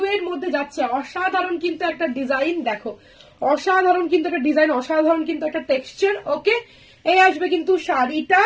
এর মধ্যে যাচ্ছে, অসাধারণ কিন্তু একটা ডিজাইন। দেখো অসাধারণ কিন্তু একটা ডিজাইন, অসাধারণ কিন্তু একটা টেক্সচার। ওকে, এই আসবে কিন্তু শাড়িটা,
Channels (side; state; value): both; identical; correlation 1.00